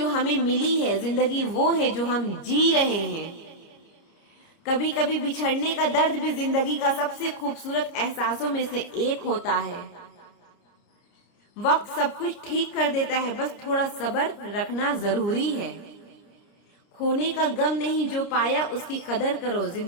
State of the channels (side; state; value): right; late; 30 ms